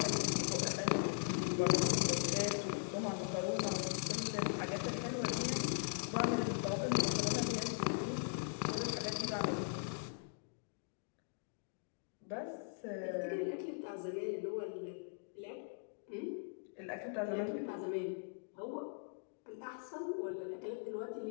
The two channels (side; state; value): right; silent; digital silence